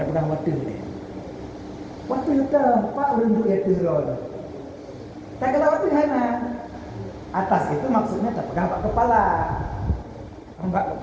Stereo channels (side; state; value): both; identical; correlation 1.00